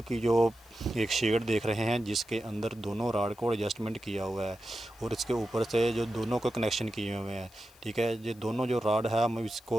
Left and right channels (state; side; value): noise; left; hiss, 27 dB below the sound